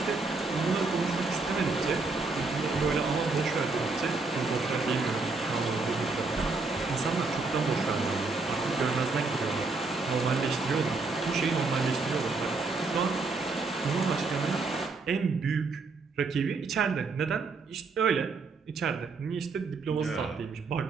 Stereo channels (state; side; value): quieter; left; 4.0 dB